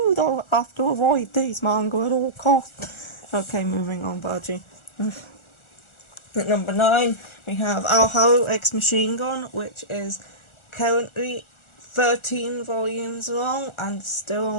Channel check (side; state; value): right; late; 1.4 ms